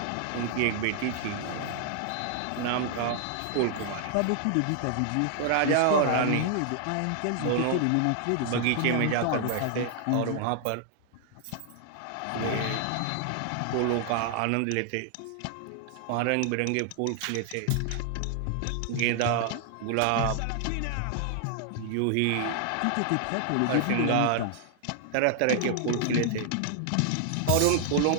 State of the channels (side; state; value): both; different; correlation 0.00